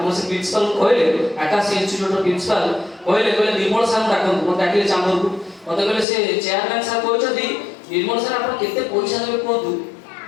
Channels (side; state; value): right; drops out; at 6.1 s